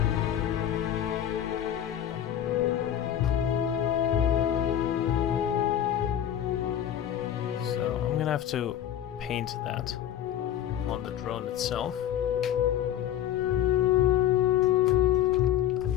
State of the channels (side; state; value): right; quieter; 10.7 dB